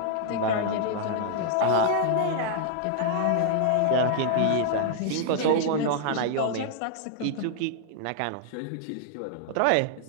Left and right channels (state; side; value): different; both; correlation -0.01